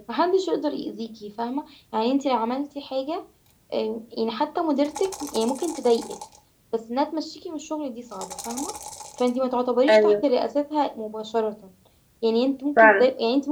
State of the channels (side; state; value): both; identical; correlation 1.00